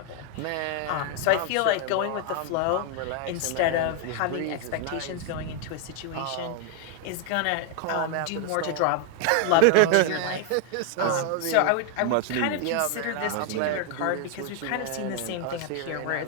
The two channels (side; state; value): both; different; correlation 0.00